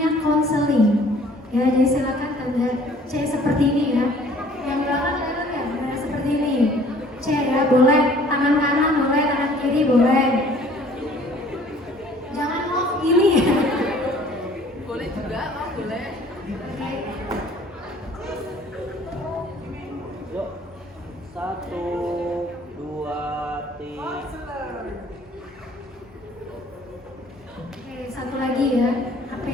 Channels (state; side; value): normal; both; correlation 0.54